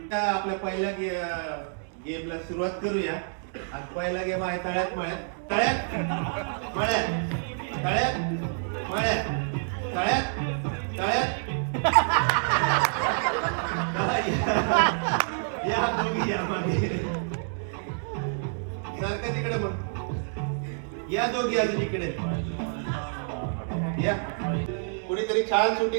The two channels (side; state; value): left; silent; 59 dB below the other